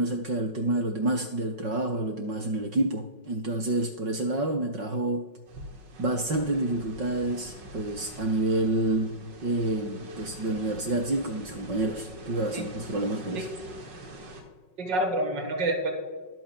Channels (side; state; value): left; late; 5.4 ms